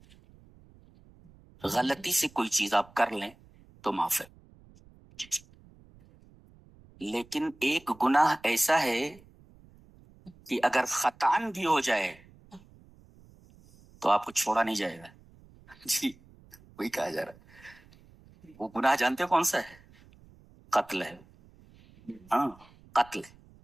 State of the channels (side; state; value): right; noise; rumble, 26 dB below the sound